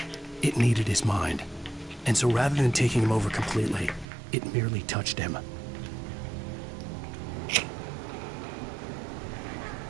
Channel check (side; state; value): left; drops out; at 4.0 s